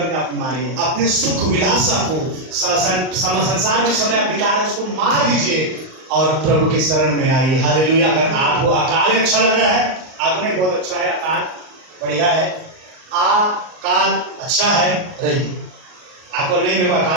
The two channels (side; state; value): left; late; 38 ms